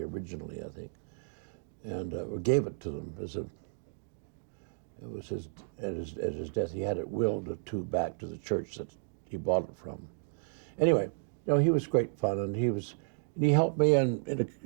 originally, I think, and or gave it to them as it was at his death. He had it willed back to the church that he bought it from. Anyway, you know, he was great fun, and he helped me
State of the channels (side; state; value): left; silent; digital silence